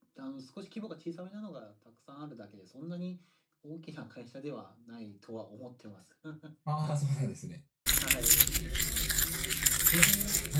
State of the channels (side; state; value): both; identical; correlation 1.00